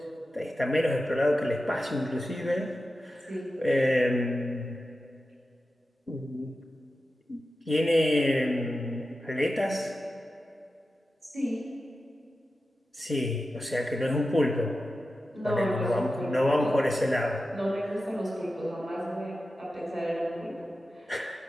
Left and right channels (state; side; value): normal; both; correlation 0.92